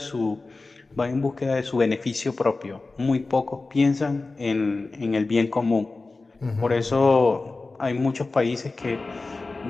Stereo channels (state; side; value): quieter; right; 3.5 dB